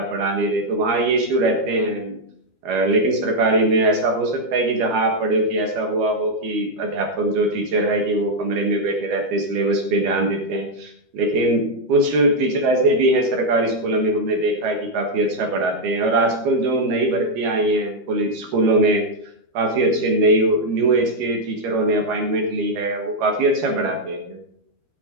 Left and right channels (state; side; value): late; left; 12 ms